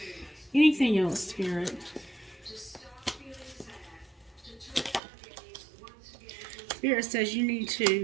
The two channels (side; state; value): left; drops out; at 5.0 s